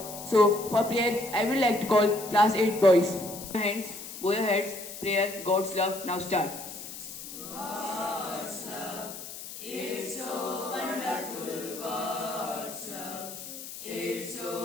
So for prayer, I would like to call class 8 boys. Hands, bow your heads, prayer, God's love. Now start. God's love, it's so wonderful. God's love, it's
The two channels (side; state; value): left; noise; hiss, 11 dB below the sound